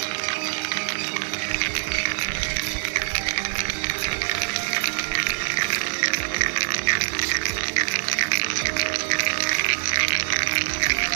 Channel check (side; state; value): left; silent; digital silence